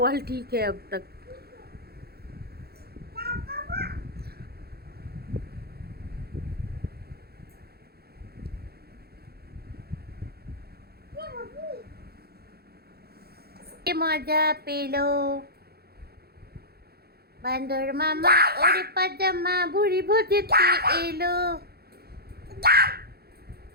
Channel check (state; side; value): late; left; 0.46 ms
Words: वाल ठीक है अब तक। মজা পেলো বান্দর মামা, ওরে পাজামা ভুড়ি ভোজেতে এলো